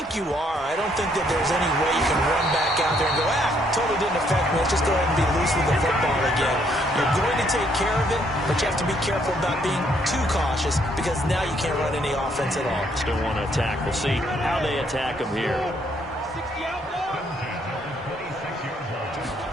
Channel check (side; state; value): both; normal; correlation 0.69